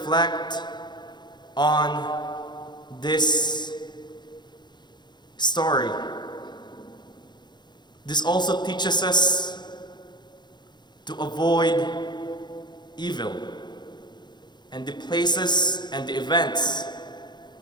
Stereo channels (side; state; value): right; late; 0.21 ms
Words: on this story, this also teaches us to avoid evil and the places and the events